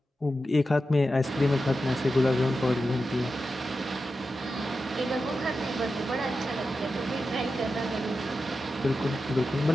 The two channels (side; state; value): both; normal; correlation 0.91